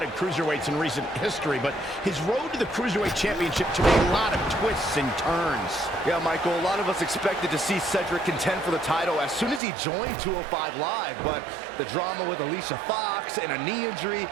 cruiserweights in recent history, but his road to the Cruiserweight Championship took a lot of twists and turns. Yeah, Michael, a lot of us expected to see Cedric contend for the title as soon as he joined 205 Live, but the drama with Alicia Fox and a knee injury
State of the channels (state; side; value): drops out; left; at 9.6 s